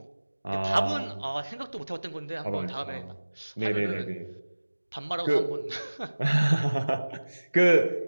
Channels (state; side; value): inverted; both; correlation -1.00